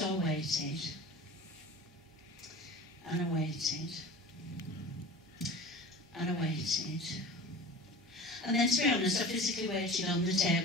I waited. And I waited. And I waited. And then, to be honest, I physically waited on the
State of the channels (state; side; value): normal; both; correlation 0.37